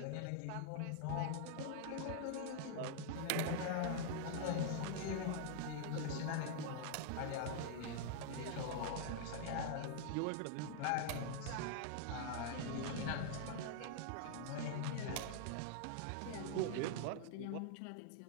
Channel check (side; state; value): both; different; correlation -0.01